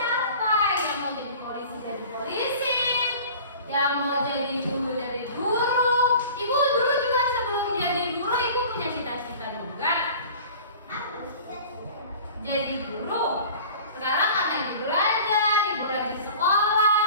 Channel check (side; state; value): both; inverted; correlation -0.42